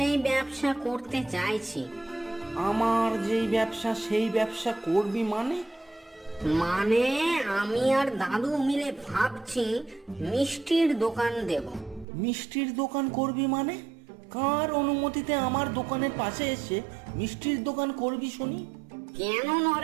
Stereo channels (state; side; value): drops out; left; at 12.1 s